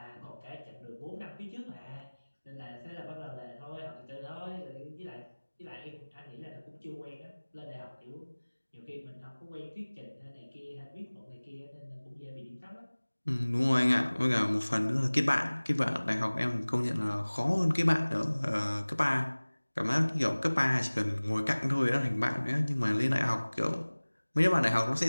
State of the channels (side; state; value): both; inverted; correlation -1.00